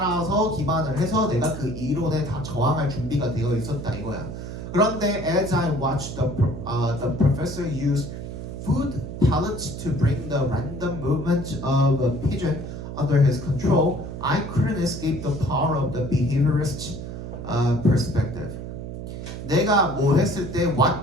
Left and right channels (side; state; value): right; noise; hum, 8 dB below the sound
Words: 기반을 해서 내가 그 이론에 다 저항할 준비가 되어 있었다 이거야. 그런데 as I watched the professor use food pellets to bring the random movement of a pigeon under his control, I couldn't escape the power of the behaviorist perspective. 내가 뭐 했을 때